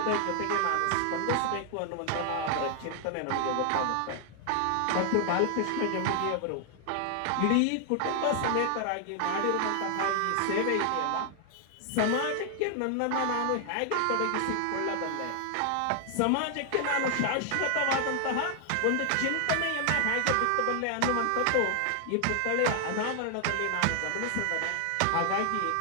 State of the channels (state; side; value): different; both; correlation 0.00